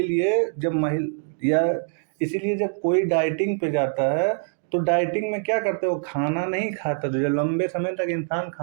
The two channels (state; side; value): silent; left; digital silence